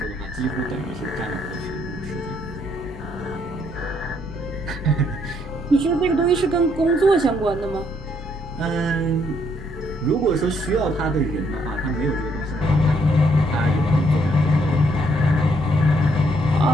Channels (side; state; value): both; normal; correlation 0.70